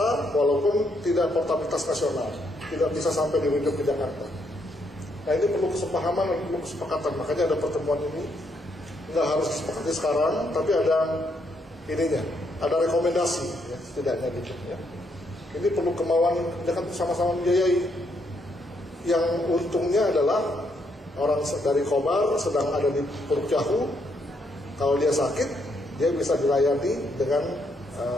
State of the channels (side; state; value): both; normal; correlation 0.75